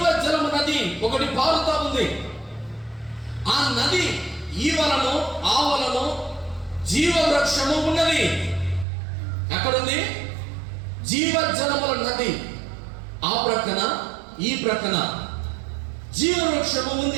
జలము నది ఒకటి పారుతా ఉంది. ఆ నది ఈవలను ఆవలను జీవ వృక్షము ఉన్నది. ఎక్కడుంది? జీవ జలముల నది ఆ ప్రక్కన ఈ ప్రక్కన జీవ వృక్షము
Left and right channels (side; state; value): left; drops out; at 8.8 s